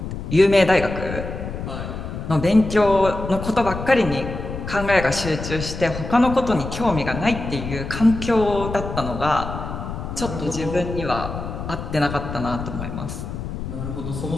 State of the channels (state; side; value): noise; left; rumble, 7 dB below the sound